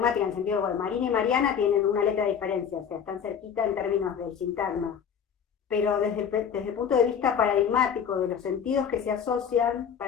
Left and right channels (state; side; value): quieter; right; 7.5 dB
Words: en el sentido de, bueno, Marina y Mariana tienen una letra de diferencia, o sea, están cerquita en términos del sintagma, pero desde el punto de vista paradigmático de los sentidos que se asocian,